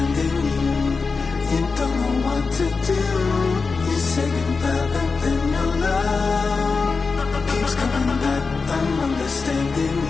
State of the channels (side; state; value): right; quieter; 4.5 dB